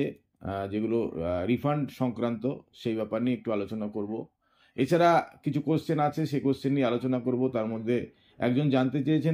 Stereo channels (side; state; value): both; identical; correlation 1.00